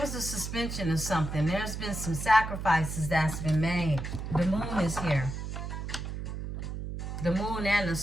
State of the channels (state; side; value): noise; right; hum, 6 dB below the sound